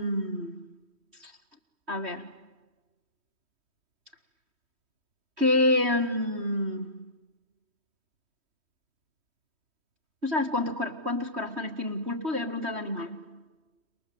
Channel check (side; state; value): left; late; 3.1 ms